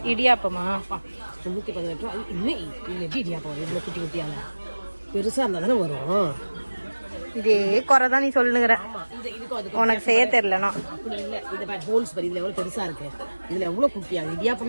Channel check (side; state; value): both; inverted; correlation -1.00